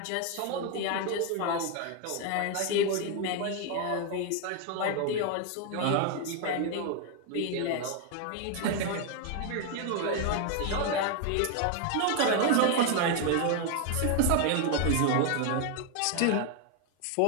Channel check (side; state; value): both; different; correlation 0.01